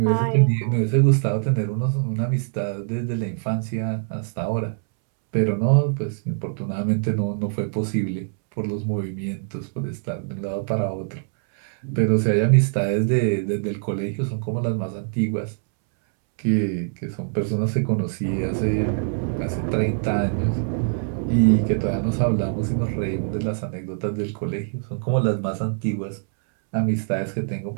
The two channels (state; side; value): silent; left; 63 dB below the other